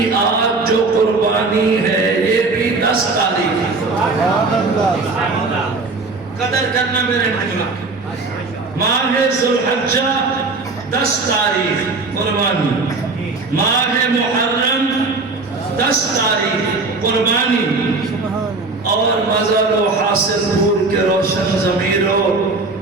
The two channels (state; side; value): quieter; left; 3.7 dB